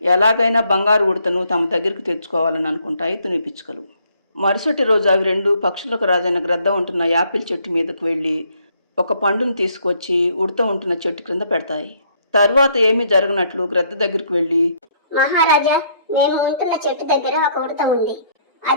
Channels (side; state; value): both; inverted; correlation -0.67